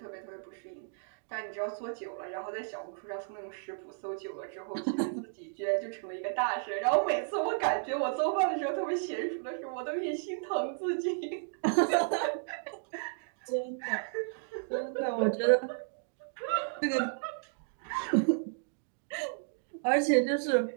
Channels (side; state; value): left; silent; digital silence